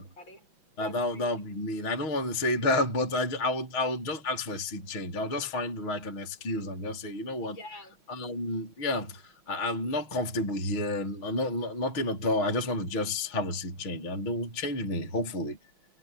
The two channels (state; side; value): late; right; 6.3 ms